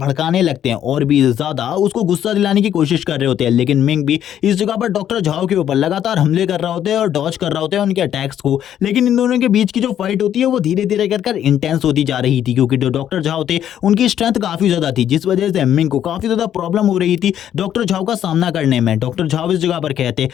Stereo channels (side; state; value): right; quieter; 10.4 dB